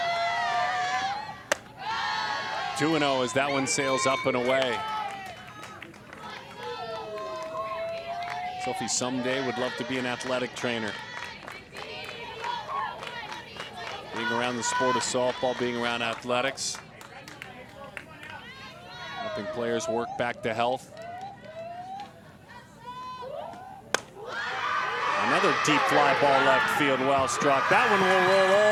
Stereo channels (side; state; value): both; identical; correlation 1.00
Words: Two 2-0 as that one sails up and away. Sophie someday would love to be an athletic trainer. Being around the sport of softball, being around athletics. Helping players work back to health. Another deep fly ball left field, well struck. That one will roll